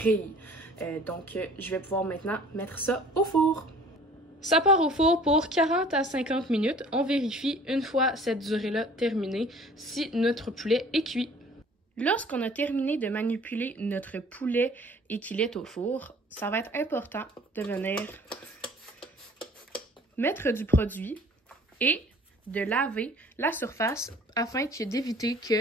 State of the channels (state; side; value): normal; both; correlation 0.50